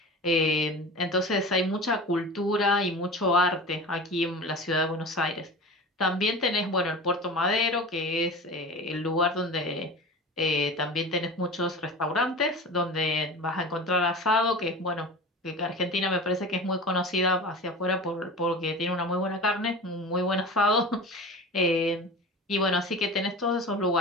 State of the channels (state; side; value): normal; both; correlation 0.34